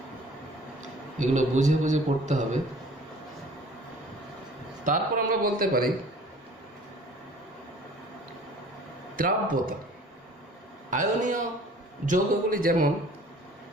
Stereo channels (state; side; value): normal; both; correlation 0.49